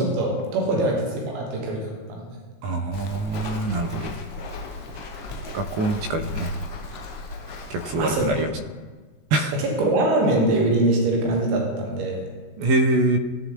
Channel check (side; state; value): left; late; 19 ms